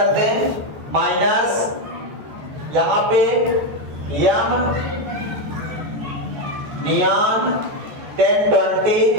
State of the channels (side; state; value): left; late; 14 ms